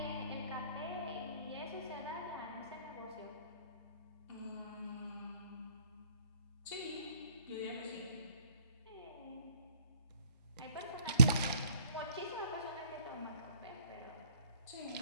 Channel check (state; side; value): inverted; both; correlation -0.61